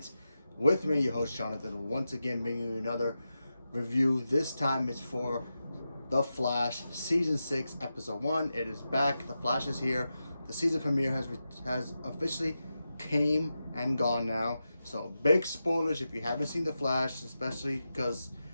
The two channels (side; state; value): both; inverted; correlation -0.90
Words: with me, your host, Jonathan. Once again, bringing you another review. This time it's for The Flash, Season 6, Episode 1. It is back. The Flash is here. The season premiere has officially came and gone now. So, big spoilers if you haven't seen The Flash, especially because